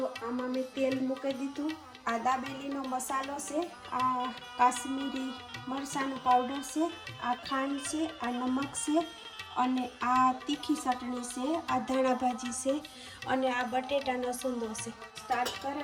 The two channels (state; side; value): identical; both; correlation 1.00